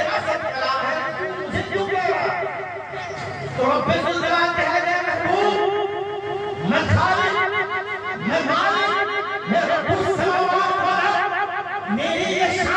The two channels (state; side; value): identical; both; correlation 1.00